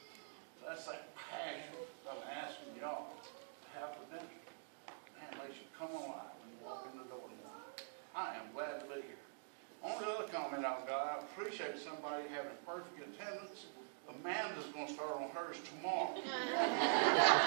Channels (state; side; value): silent; left; digital silence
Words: That's that passion I'm asking y'all to have for dinner. Man, makes you come alive when you walk in the door tomorrow. I am glad to be here. Only other comment I've got, I appreciate somebody having perfect attendance. Amanda's going to start on hers tomorrow.